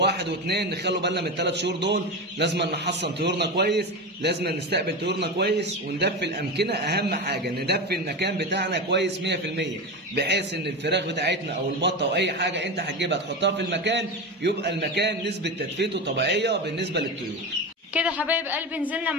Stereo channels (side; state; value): both; normal; correlation 0.20